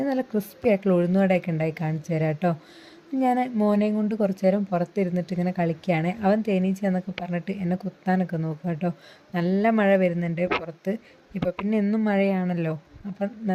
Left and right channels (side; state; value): both; identical; correlation 1.00